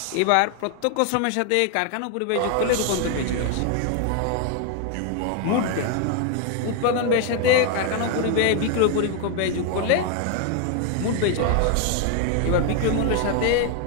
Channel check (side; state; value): both; different; correlation 0.01